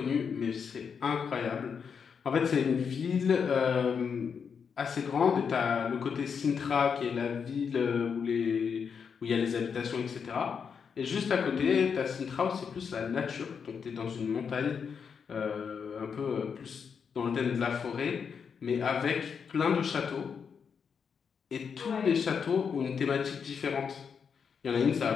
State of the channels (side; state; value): right; quieter; 6.5 dB